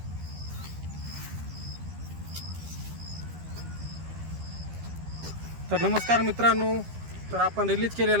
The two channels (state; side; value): late; left; 12 ms